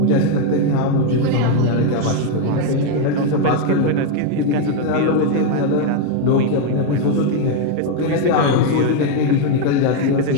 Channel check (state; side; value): different; both; correlation 0.01